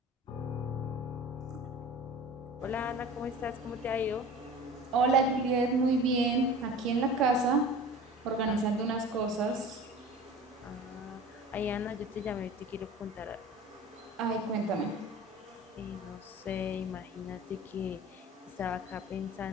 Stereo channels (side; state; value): both; normal; correlation 0.39